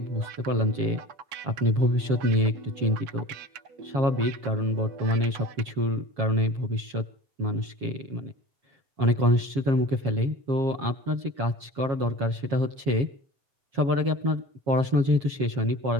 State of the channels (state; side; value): late; left; 7.4 ms